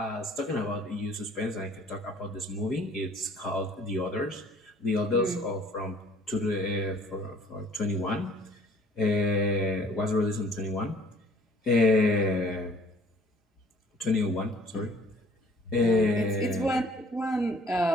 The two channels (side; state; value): both; normal; correlation 0.55